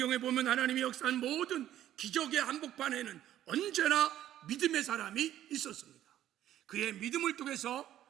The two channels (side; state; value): left; quieter; 12.2 dB